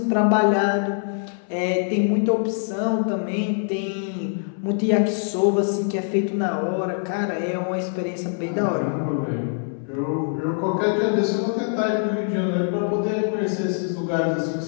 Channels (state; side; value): silent; right; 63 dB below the other